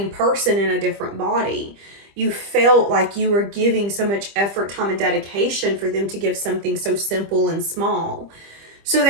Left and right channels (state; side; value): late; left; 25 ms